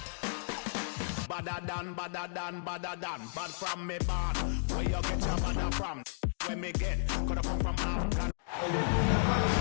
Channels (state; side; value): silent; right; digital silence